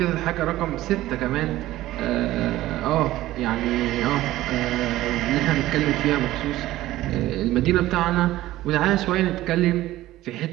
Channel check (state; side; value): quieter; left; 15.7 dB